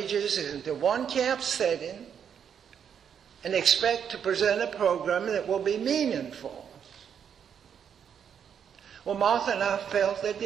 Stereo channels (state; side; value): quieter; left; 8.0 dB